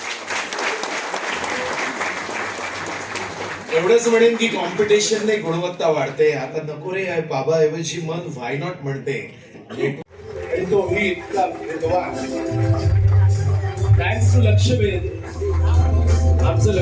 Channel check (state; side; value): identical; both; correlation 1.00